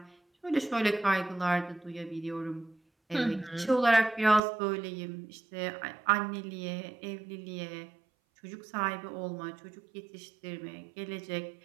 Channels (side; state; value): left; drops out; at 4.4 s